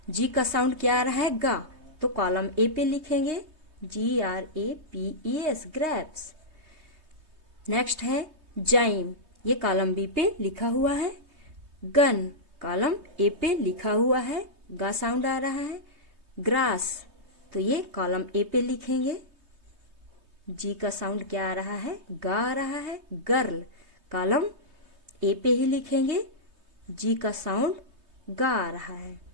जी का साउंड क्या आ रहा है गा, तो कॉलम ए पे लिखेंगे GRAPES, ग्रेप्स। नेक्स्ट है जाइम, ये कॉलम बी पे लिखा हुआ है। गन, कॉलम ए पे लिखा हुआ है, गा साउंड आ रहा है। ग्रास, तो ये कॉलम ए पे लिखेंगे, जी का साउंड क्या आ रहा है, गा आ रहा है। गर्ल, कॉलम ए पे ही लिखेंगे, जी का साउंड गा आ रहा है।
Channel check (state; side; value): late; left; 3.2 ms